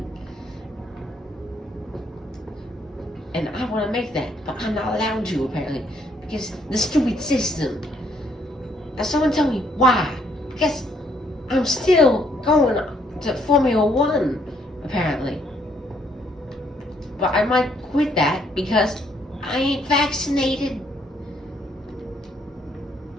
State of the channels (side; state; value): both; normal; correlation 0.69